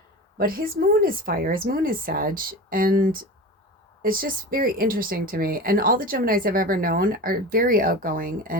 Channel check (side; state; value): both; normal; correlation 0.31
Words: but his moon is fire. His moon is Sag. And it's just very interesting to me. And all the Geminis I've ever known are very outgoing